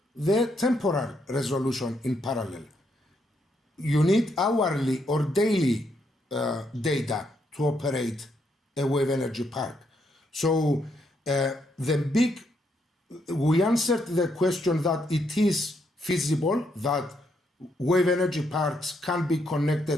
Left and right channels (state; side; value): normal; both; correlation 0.76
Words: the temporal resolution in parallel. You need hourly or daily data to operate a wave energy park. So we answered the question that it is feasible that wave energy parks can be